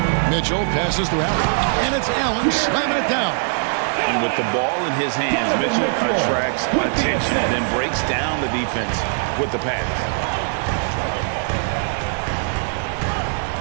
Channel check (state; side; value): silent; left; 65 dB below the other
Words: Mitchell passes to Allen. And it's Allen slamming it down. And with the ball in his hands, Mitchell attracts attention, then breaks down the defense with the pass.